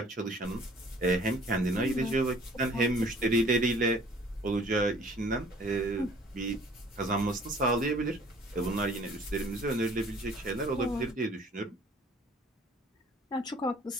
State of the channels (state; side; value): normal; both; correlation 0.53